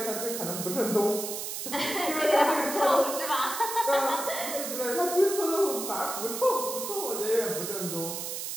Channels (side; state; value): right; noise; hiss, 5 dB below the sound